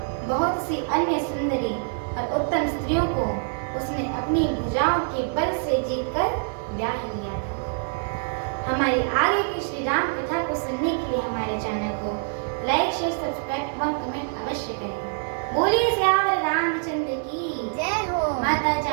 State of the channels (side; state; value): left; silent; 60 dB below the other